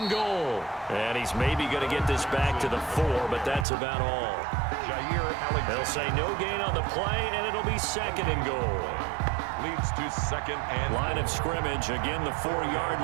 and goal. And he's maybe going to get this back to the 4, but that's about all. They'll say no gain on the play, and it'll be 2nd and goal. Leads to 2nd and line of scrimmage, again the 4-yard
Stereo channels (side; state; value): left; drops out; at 3.7 s